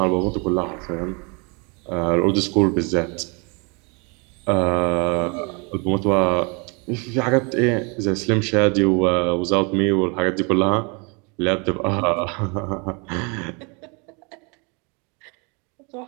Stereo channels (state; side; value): quieter; left; 32.0 dB